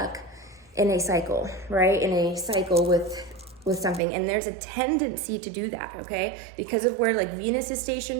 in a cycle, right? In a cycle with something. And there's a tendency to do that, okay? Because of where Venus is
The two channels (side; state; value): left; drops out; at 4.0 s